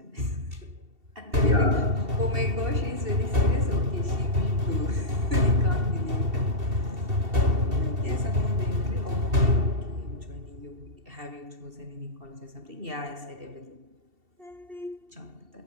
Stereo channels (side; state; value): left; late; 2.7 ms